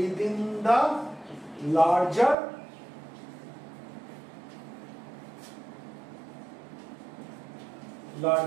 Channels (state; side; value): drops out; left; at 2.4 s